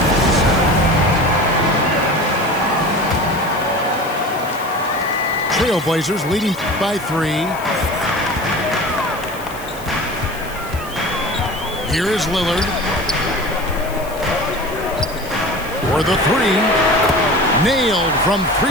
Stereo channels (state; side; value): noise; left; hiss, 17 dB below the sound